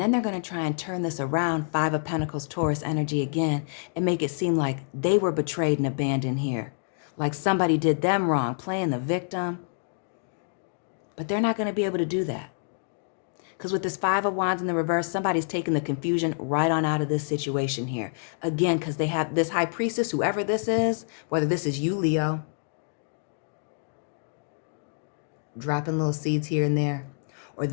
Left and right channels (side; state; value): right; silent; digital silence